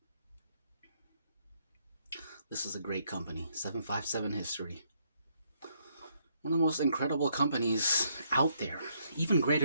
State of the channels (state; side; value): inverted; both; correlation -0.72